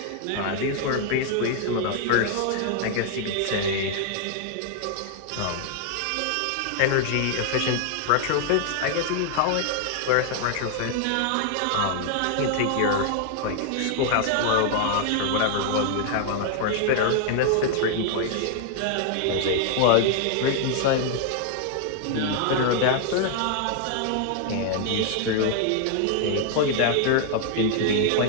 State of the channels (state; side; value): different; both; correlation 0.00